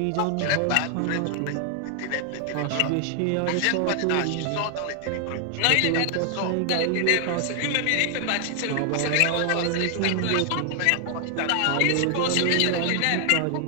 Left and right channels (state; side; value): different; both; correlation 0.00